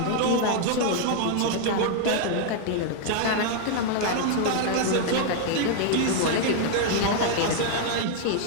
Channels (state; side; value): different; both; correlation 0.00